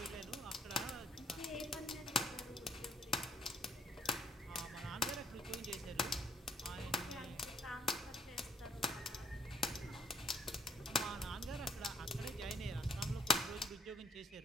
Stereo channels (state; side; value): normal; both; correlation 0.65